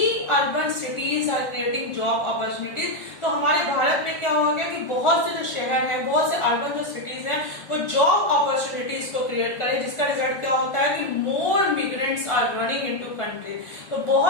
urban cities are creating job opportunities. तो हमारे भारत में क्या हो गया कि बहुत से जो शहर हैं, बहुत से अर्बन जो सिटीज हैं वो जॉब अपॉर्चुनिटीज को क्रिएट करें, जिसका रिजल्ट क्या होता है कि more migrants are running into country. तो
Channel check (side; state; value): right; late; 1.4 ms